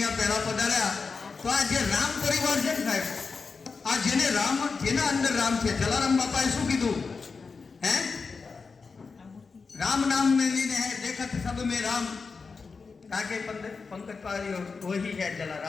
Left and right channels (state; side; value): quieter; right; 4.8 dB